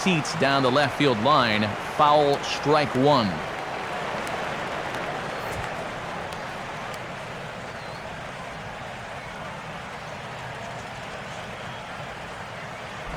down the left field line. Foul, strike 1.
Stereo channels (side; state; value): both; identical; correlation 1.00